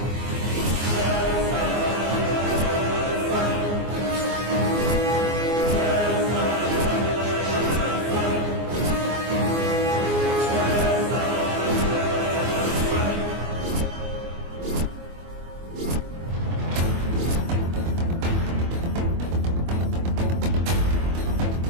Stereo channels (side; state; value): left; late; 24 ms